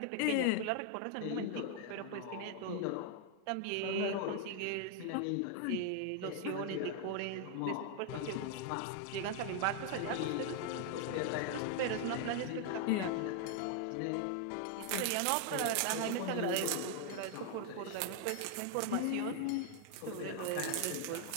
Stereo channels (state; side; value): different; both; correlation 0.00